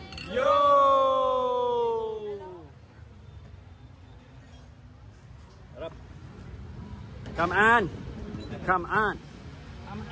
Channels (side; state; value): both; identical; correlation 1.00